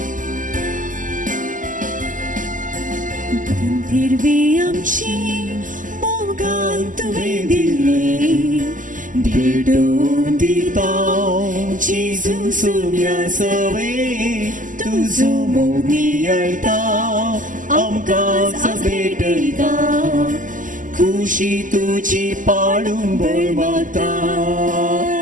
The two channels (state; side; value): late; left; 0.38 ms